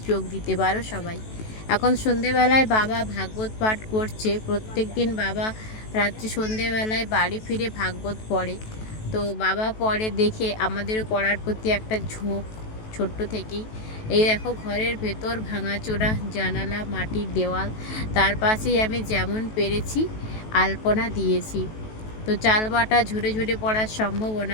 যোগ দিতে পারো সবাই। এখন সন্ধেবেলায় বাবা ভাগবত পাঠ করছে। প্রত্যেক দিন বাবা রাত্রি সন্ধেবেলায় বাড়ি ফিরে ভাগবত পড়ে। তো বাবা পড়ে দেখে আমাদেরও পড়ার প্রতি একটা ঝোঁক ছোট্ট থেকেই। এই দেখো ঘরের ভেতর ভাঙাচোরা জানালা, মাটির দেওয়াল, তার পাশেই আমি যেমন পেরেছি আলপনা দিয়েছি। তো চাল বাটা ঝরে ঝরে পড়ার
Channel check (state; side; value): late; right; 18 ms